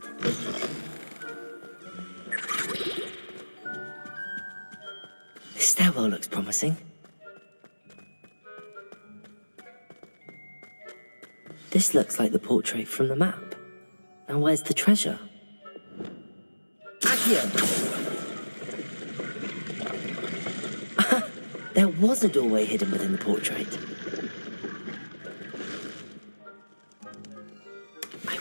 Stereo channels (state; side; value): inverted; both; correlation -1.00